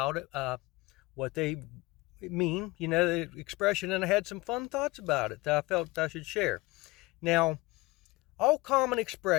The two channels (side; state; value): right; quieter; 22.1 dB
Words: it, what they mean, the expression, and I had some fun thoughts about it that I felt I should share. Now, all common